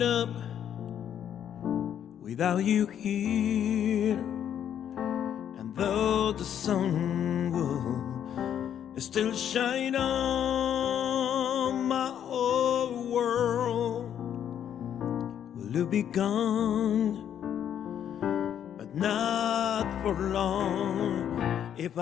up without you here. And though the sun will still shine on my whole world, will you be gone? But not for long. If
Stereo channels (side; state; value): right; quieter; 9.5 dB